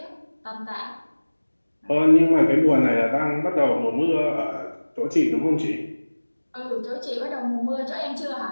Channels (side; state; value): both; inverted; correlation -1.00